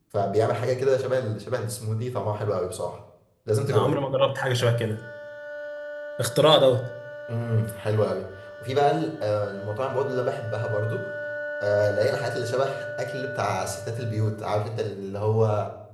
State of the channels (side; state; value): both; identical; correlation 1.00